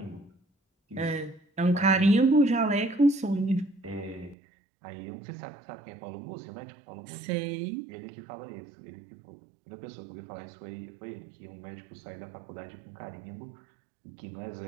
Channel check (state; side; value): drops out; left; at 4.4 s